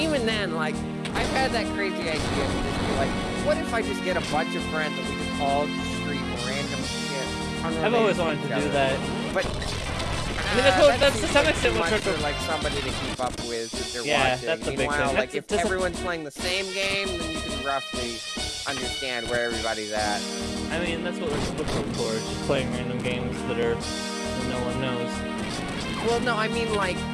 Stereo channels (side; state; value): both; identical; correlation 1.00